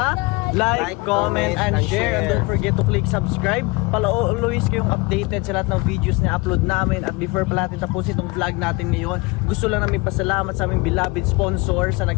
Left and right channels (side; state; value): right; quieter; 24.9 dB